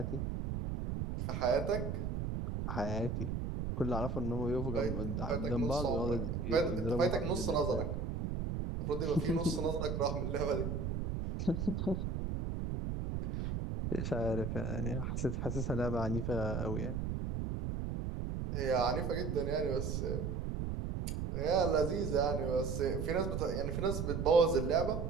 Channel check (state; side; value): noise; right; rumble, 2 dB below the sound